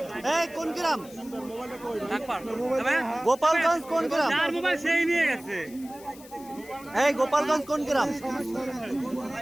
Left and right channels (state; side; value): noise; left; hiss, 21 dB below the sound